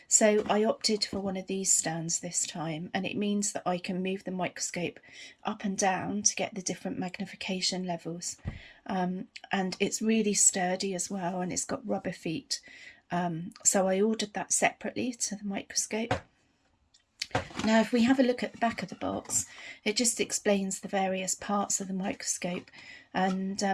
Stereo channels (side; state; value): both; identical; correlation 1.00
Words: so I opted for one of these stands this time, and it means that I can move the microscope up and down to get the different magnification levels. And it's really sturdy as well, and it's got rubber feet, so I ordered that separately to the microscope. Now, if we have a look at the back of the box, it just explains the various parts of the microscope, and